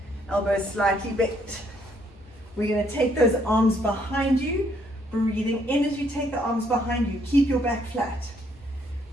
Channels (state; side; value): normal; both; correlation 0.69